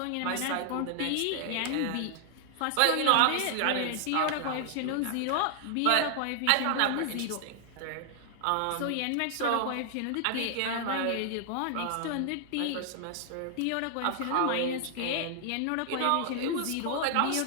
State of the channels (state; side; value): different; both; correlation 0.00